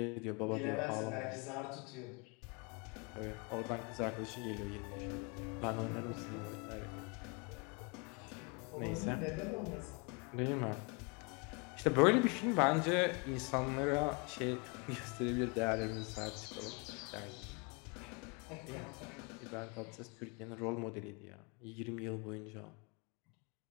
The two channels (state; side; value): quieter; right; 31.2 dB